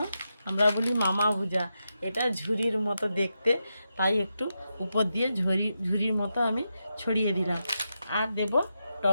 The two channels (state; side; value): inverted; both; correlation -0.87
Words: আমরা বলি মামা ভুজা, এটা ঝুরির মতো দেখতে, তাই একটু উপর দিয়ে ঝুরির মতো আমি ছড়িয়ে দিলাম। আর দেব